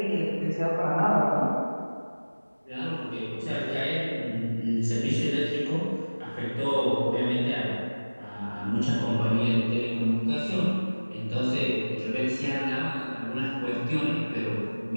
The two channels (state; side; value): inverted; both; correlation -1.00